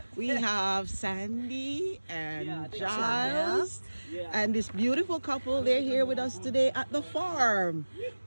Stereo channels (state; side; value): inverted; both; correlation -1.00